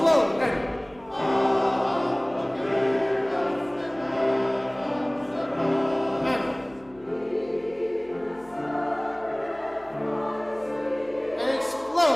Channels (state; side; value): noise; left; hum, 27 dB below the sound